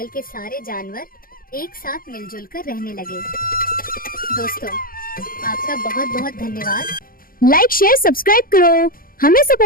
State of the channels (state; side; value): late; right; 0.42 ms